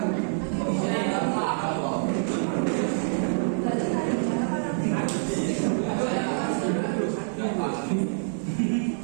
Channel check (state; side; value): silent; left; digital silence